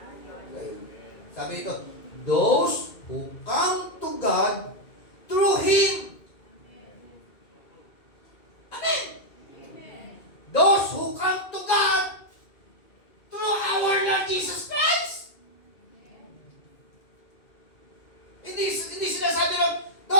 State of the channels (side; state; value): right; late; 2.3 ms